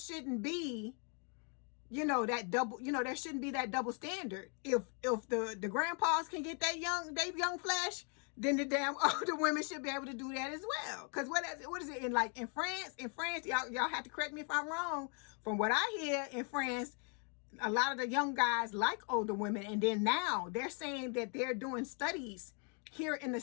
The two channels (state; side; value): quieter; right; 39.1 dB